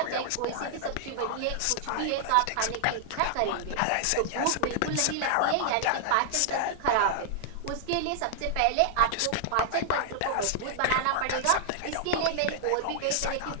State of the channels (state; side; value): different; both; correlation -0.01